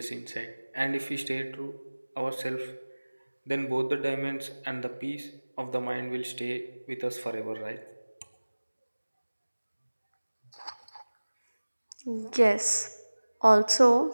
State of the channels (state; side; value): inverted; both; correlation -1.00